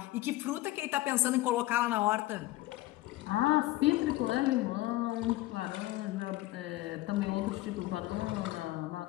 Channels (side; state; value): right; quieter; 17.4 dB